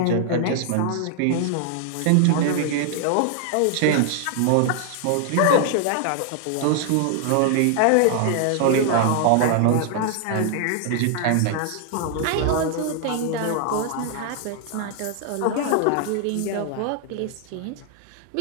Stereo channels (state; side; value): different; both; correlation 0.00